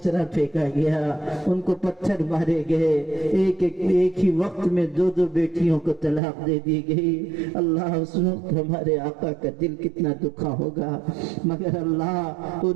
پھینکا گیا، ان کو پتھر مارے گئے، ایک ہی وقت میں دو بیٹیوں کو طلاق دے دی گئی۔ اللہ اس وقت ہمارے آقا کا دل کتنا دکھا ہوگا، مگر اللہ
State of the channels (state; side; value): drops out; left; at 6.2 s